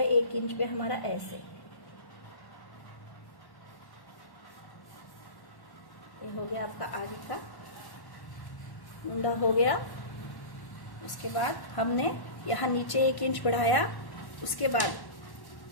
1 इंच पे हमारा ऐसे। ये हो गया आपका आगे का मुंडा हो गया। उसके बाद हमने यहाँ नीचे 1 इंच बढ़ाया। उसके बाद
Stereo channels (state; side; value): late; right; 1.1 ms